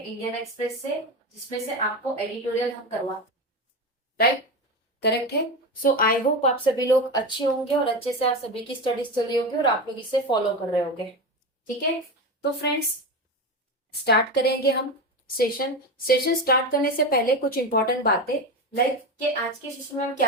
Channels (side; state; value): both; normal; correlation 0.20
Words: एक्सप्रेस से, जिसमें से आपको एडिटोरियल हम करवा, राइट, करेक्ट है। सो आई होप आप सभी लोग अच्छे होंगे और अच्छे से आप सभी की स्टडीज चल रही होगी और आप लोग इसे फॉलो कर रहे होंगे। ठीक है, तो फ्रेंड्स स्टार्ट करेंगे हम सेशन। सेशन स्टार्ट करने से पहले कुछ इंपॉर्टेंट बातें, लाइक कि आज के सेशन में हम